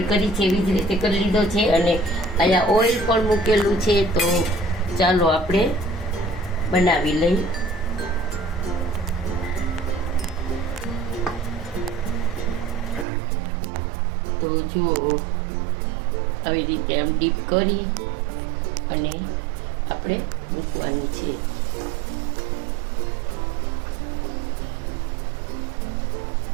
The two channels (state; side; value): drops out; left; at 13.1 s